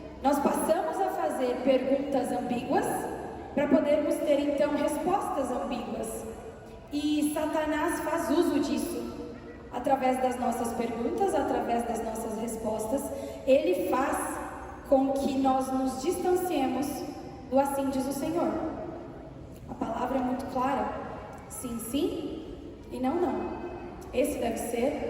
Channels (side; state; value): both; identical; correlation 1.00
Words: Nós passamos a fazer perguntas ambíguas para podermos ter então respostas ambíguas. E Satanás faz uso disso. Através das nossas perguntas, através das nossas respostas, ele faz com que nós nos distanciemos do assim diz o Senhor. A palavra é muito clara: sim, sim e não, não. Esse deve